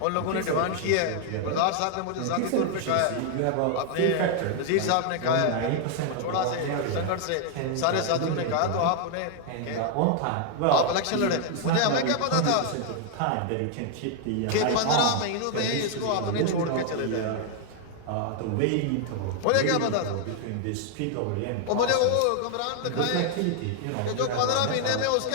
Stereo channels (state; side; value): different; both; correlation 0.00